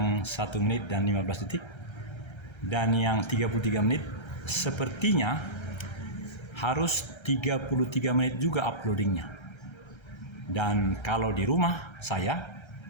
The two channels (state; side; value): late; right; 1.3 ms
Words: 1 menit dan 15 detik, dan yang 33 menit sepertinya harus 33 menit juga uploadingnya. Dan kalau di rumah saya